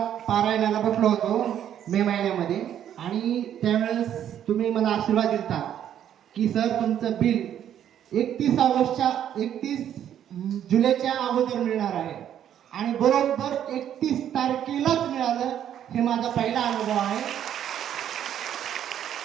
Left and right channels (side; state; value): left; quieter; 10.2 dB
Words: पारायणाला बसलो होतो मे महिन्यामध्ये, आणि त्यावेळेस तुम्ही मला आशीर्वाद दिला की सर तुमचं बिल 31 जुलैच्या अगोदर मिळणार आहे, आणि बरोबर 31 तारखेलाच मिळालं. हे माझा पहिला अनुभव आहे.